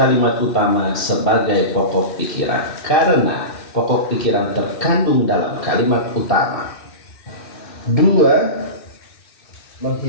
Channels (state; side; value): late; right; 2.7 ms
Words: utama sebagai pokok pikiran, karena pokok pikiran terkandung dalam kalimat utama. 2.